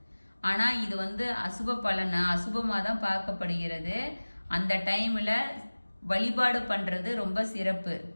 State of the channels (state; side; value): inverted; both; correlation -1.00